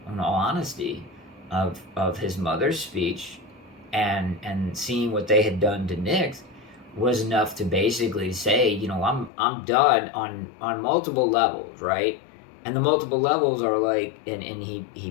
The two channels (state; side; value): drops out; right; at 9.3 s